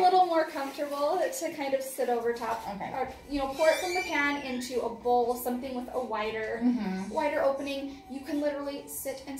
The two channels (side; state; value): both; identical; correlation 1.00